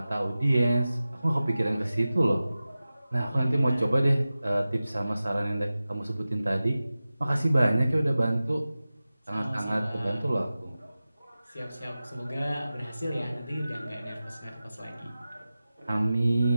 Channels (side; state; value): both; inverted; correlation -0.96